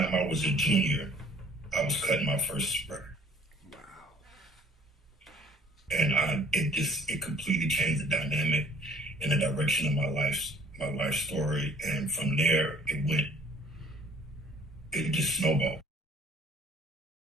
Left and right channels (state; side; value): normal; both; correlation 0.56